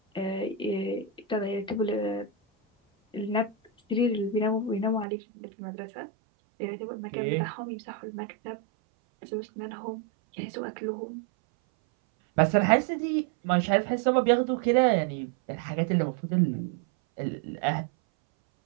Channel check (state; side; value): drops out; left; at 5.1 s